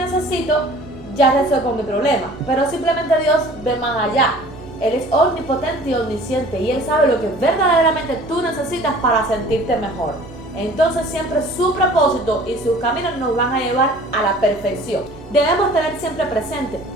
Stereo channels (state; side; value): normal; both; correlation 0.47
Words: ya resuelvo mi problema, pero simplemente Dios ve más allá. Él es omnipotente y omnisciente y Él sabe lo que verdaderamente tú necesitas para sentirte mejor. Entonces siempre su propósito y sus caminos nos van a llevar a la perfección. Debemos tener siempre presente